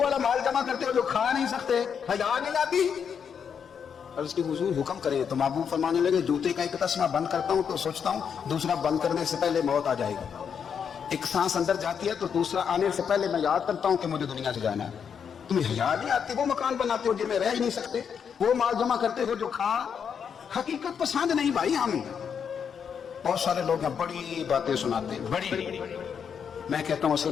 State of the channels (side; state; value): right; quieter; 7.2 dB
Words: والا مال جمع کرتے ہو جو کھا نہیں سکتے، حیا نہیں آتی؟ اور اس کی حضور حکم کرے تو محبوب فرمانے لگے جوتے کا ایک تسمہ بند کرتا ہوں تو سوچتا ہوں دوسرا بند کرنے سے پہلے موت آ جائے گی، ایک سانس اندر جاتی ہے تو دوسرا آنے سے پہلے میں یاد کرتا ہوں کہ مجھے دنیا سے جانا ہے۔ تمہیں حیا نہیں آتی؟ وہ مکان بناتے ہو جن میں رہ ہی نہیں سکتے، وہ مال جمع کرتے ہو جو کھا، حقیقت پسند نہیں بھائی ہم۔ بہت سارے لوگ ہیں بڑی باتیں سناتے ہیں، بڑی، میں کہتا ہوں اصل